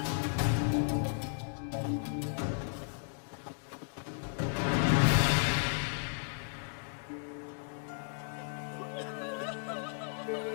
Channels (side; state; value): right; silent; digital silence